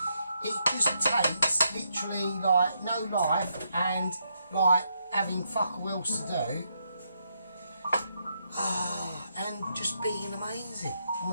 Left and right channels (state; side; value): inverted; both; correlation -0.79